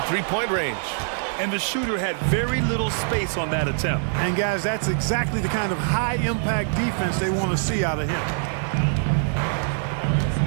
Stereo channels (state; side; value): silent; left; digital silence